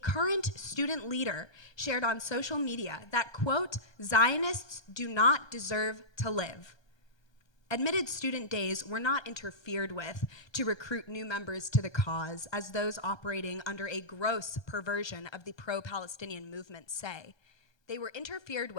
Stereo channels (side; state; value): right; late; 1.3 ms